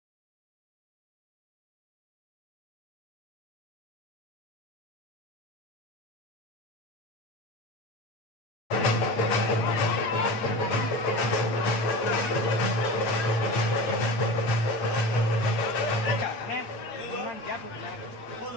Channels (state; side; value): late; right; 8.7 ms